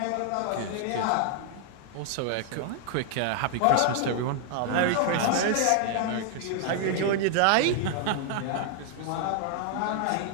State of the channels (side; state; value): both; different; correlation 0.00